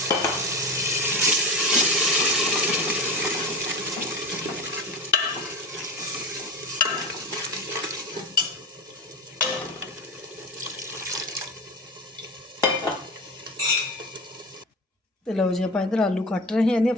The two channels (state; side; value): normal; both; correlation 0.26